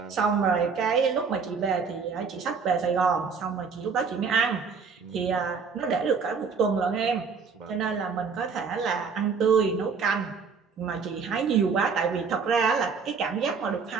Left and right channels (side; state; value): left; quieter; 5.4 dB